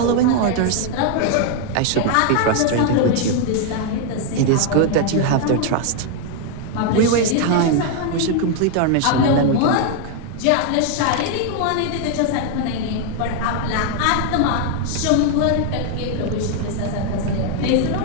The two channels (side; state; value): both; different; correlation 0.00